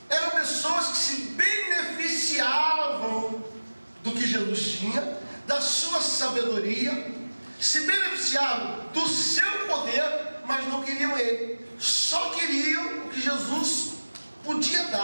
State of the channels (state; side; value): inverted; both; correlation -1.00